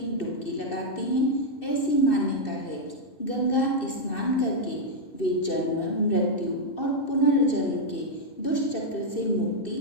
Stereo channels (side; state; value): right; late; 2.6 ms